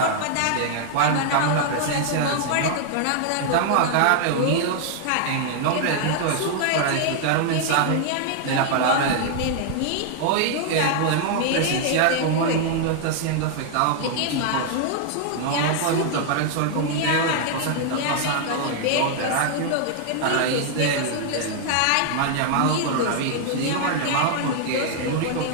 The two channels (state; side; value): different; both; correlation 0.00